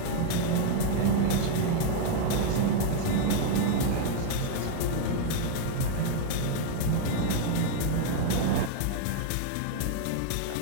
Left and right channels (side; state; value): both; different; correlation 0.00